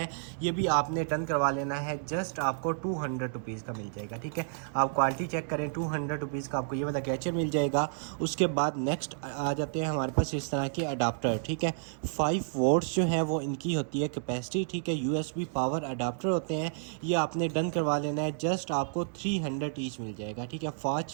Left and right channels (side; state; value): left; silent; digital silence